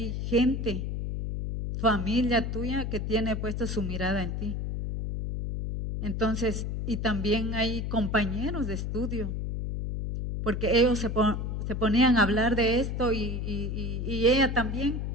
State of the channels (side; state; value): left; noise; hum, 3 dB below the sound